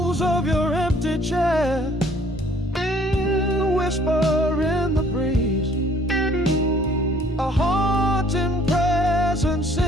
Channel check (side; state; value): both; normal; correlation 0.59